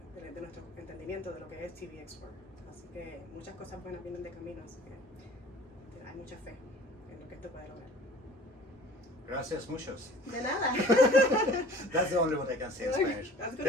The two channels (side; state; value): both; normal; correlation 0.47